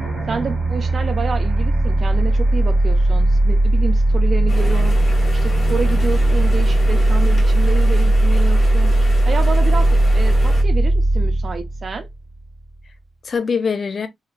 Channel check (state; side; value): normal; both; correlation 0.93